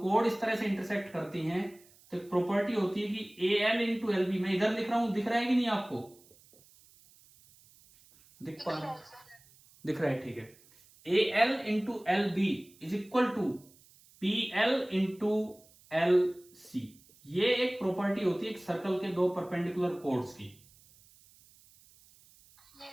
कोड इस तरह से इंटरसेक्ट करती हैं, तो एक प्रॉपर्टी होती है कि AL इंटू LB, मैं इधर लिख रहा हूं, दिख रहा है कि नहीं आपको? दिख पा रहा है? दिख रहा है, ठीक है। AL into LB is equal to PL into LC। ये एक प्रॉपर्टी होती है एक सर्कल के 2 परपेंडिकुलर कोड्स की।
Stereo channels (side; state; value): right; noise; hiss, 27 dB below the sound